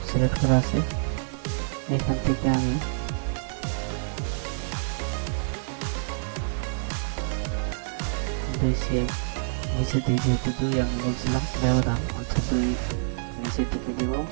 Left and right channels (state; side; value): silent; left; digital silence